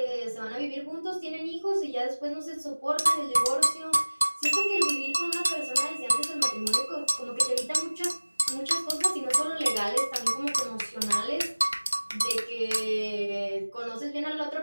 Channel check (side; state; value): both; inverted; correlation -1.00